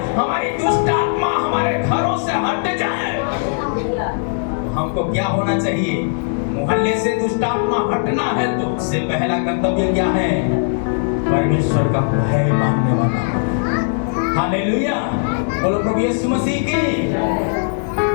हमारी दुष्ट आत्मा हमारे घरों से हट जाए। हमको क्या होना चाहिए? मोहल्ले से दुष्ट आत्मा हटना है तो उससे पहला कर्तव्य क्या है? परमेश्वर का भय मानने वाला। हालेलुया, बोलो प्रभु यीशु मसीह की।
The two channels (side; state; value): right; silent; 67 dB below the other